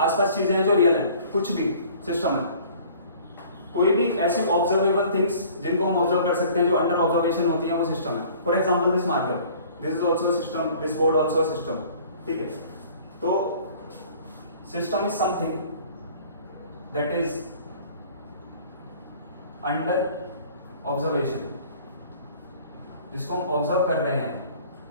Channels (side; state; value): both; inverted; correlation -0.51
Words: चीजें हैं जो रियल हैं, कुछ भी सिस्टम है। कोई भी ऐसी ऑब्जर्वेबल थिंग्स जिनको हम ऑब्जर्व कर सकते हैं, जो अंडर ऑब्जर्वेशन होती है, वो सिस्टम है। For example this marker, this is also a system, this board also a system. ठीक है, तो system is something that is under observation. जिसको हम ऑब्जर्व कर रहे हैं